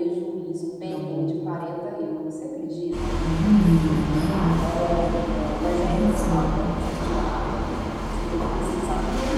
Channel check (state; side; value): identical; both; correlation 1.00